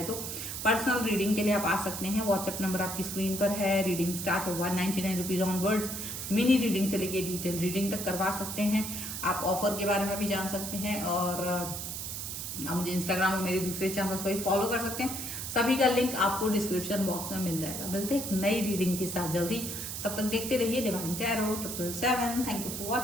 तो। पर्सनल रीडिंग के लिए आप आ सकते हैं, व्हाट्सएप नंबर आपकी स्क्रीन पर है। रीडिंग स्टार्ट है 199 रुपीज ऑनवर्ड्स। मिनी रीडिंग से लेके डिटेल रीडिंग तक करवा सकते हैं। आप ऑफर के बारे में भी जान सकते हैं और आप मुझे इंस्टाग्राम और मेरे दूसरे चैनल्स पर फॉलो कर सकते हैं। सभी का लिंक आपको डिस्क्रिप्शन बॉक्स में मिल जाएगा। मिलते हैं एक नई रीडिंग के साथ जल्दी, तब तक देखते रहिए डिवाइन टैरो 777। थैंक यू फॉर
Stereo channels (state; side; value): noise; right; hiss, 6 dB below the sound